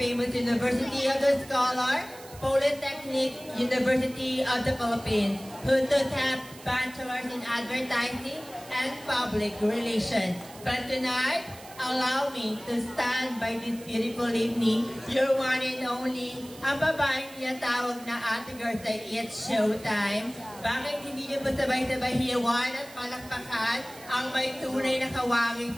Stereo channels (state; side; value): noise; right; hiss, 19 dB below the sound